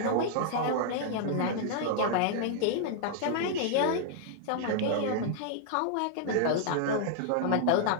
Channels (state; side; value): different; both; correlation -0.01